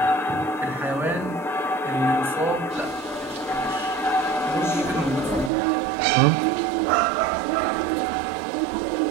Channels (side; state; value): left; drops out; at 5.5 s